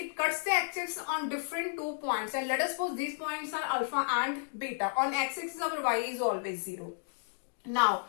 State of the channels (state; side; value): silent; right; digital silence